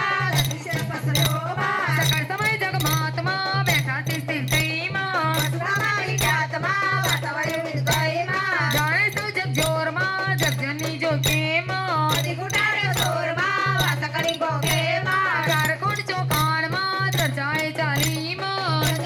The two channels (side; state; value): both; identical; correlation 1.00